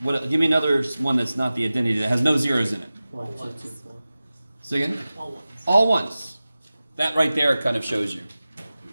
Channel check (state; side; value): inverted; both; correlation -0.96